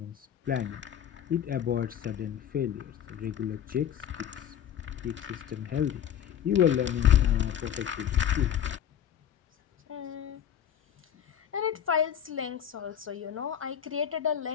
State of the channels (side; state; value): right; quieter; 9.5 dB